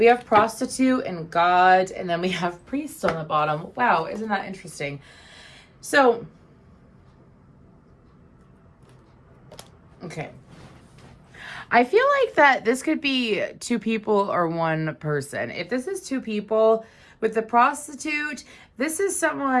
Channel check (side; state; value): both; identical; correlation 1.00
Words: have prostitute and God, and then we have priest on the bottom. Wow, isn't that interesting? So, okay. I feel like that this could be two people or one person. If this is two people, with the prostitute, this is